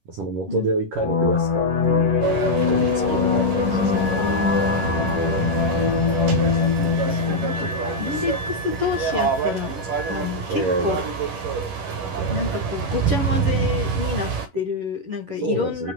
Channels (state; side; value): late; left; 11 ms